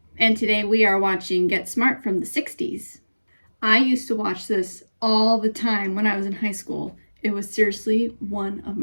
And today we are watching Get Smart from the 60s. I used to watch this all the time when I was in high school. It was seriously one of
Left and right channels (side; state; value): both; inverted; correlation -1.00